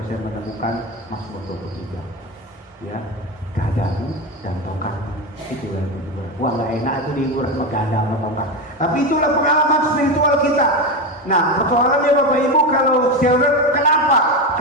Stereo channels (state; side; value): normal; both; correlation 0.16